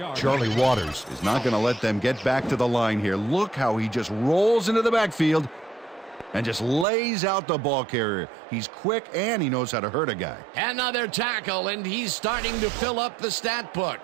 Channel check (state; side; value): drops out; left; at 6.9 s